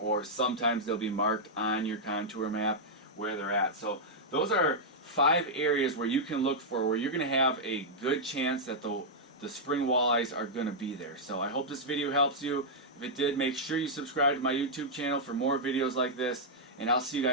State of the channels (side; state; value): both; normal; correlation -0.07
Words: sometimes they'll be marked on your contour map where they're at. So those are 5 areas where you can look for, where you're going to have a good chance that the spring walleyes are going to be there. So I hope this video helps you. If it did, make sure you subscribe to my YouTube channel for more videos like this, and I'll see you